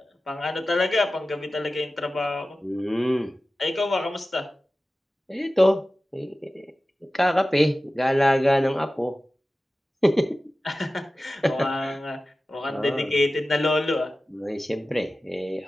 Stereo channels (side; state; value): both; normal; correlation 0.95